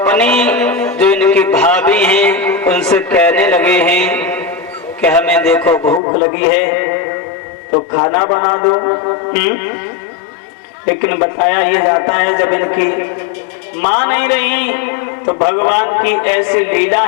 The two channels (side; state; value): right; drops out; at 6.0 s